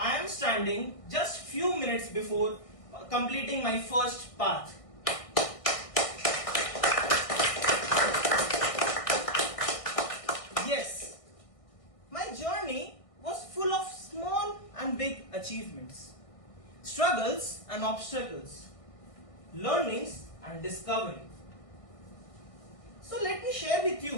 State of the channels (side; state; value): right; late; 1.5 ms